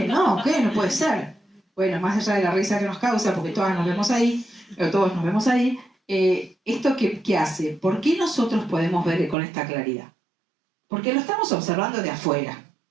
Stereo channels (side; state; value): left; drops out; at 9.3 s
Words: no, ¿qué? No puede ser. Bueno, más allá de la risa que nos causa, porque todas nos vemos ahí, o todos nos vemos ahí, ¿esto qué hace? ¿Por qué nosotros podemos ver con esta claridad? Porque lo estamos observando de afuera.